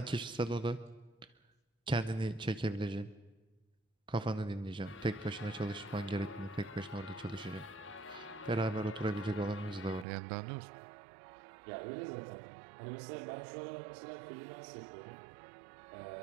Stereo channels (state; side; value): drops out; left; at 10.1 s